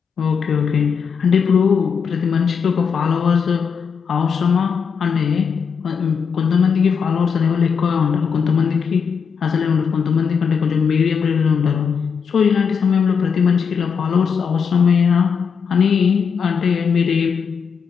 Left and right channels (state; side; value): quieter; right; 6.3 dB